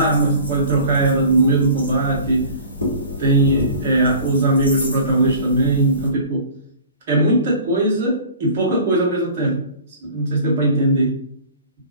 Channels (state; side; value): inverted; both; correlation -0.44